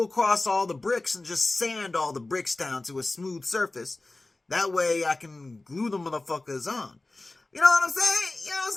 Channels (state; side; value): quieter; right; 3.0 dB